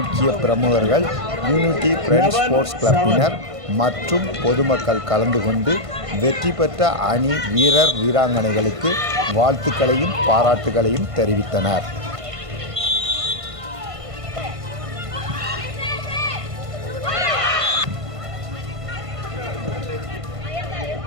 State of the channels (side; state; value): left; late; 1.5 ms